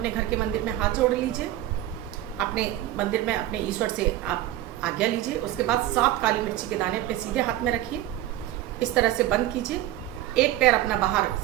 घर के मंदिर में हाथ जोड़ लीजिए, अपने मंदिर में अपने ईश्वर से आप आज्ञा लीजिए। उसके बाद 7 काली मिर्ची के दाने अपने सीधे हाथ में रखिए, इस तरह से बंद कीजिए। एक पैर अपना बाहर,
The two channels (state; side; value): quieter; left; 13.9 dB